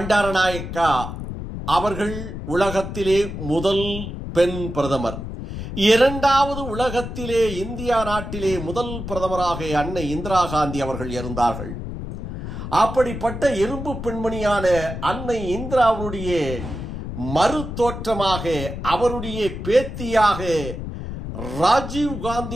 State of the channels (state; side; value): noise; left; rumble, 7 dB below the sound